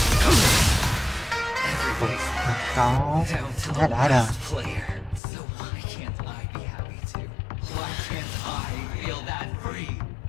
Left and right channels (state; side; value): drops out; right; at 5.2 s